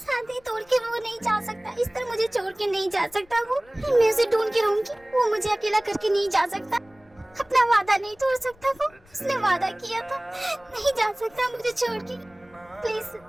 तोड़ के वो नहीं जा सकता, इस तरह मुझे छोड़ के नहीं जा सकता। वो मैं उसे ढूंढ के रहूंगी, वो मुझे अकेला करके नहीं जा सकता। अपना वादा नहीं तोड़ सकता वो, उसने वादा किया था। नहीं जा सकता मुझे छोड़ के। प्लीज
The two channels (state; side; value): noise; left; rumble, 29 dB below the sound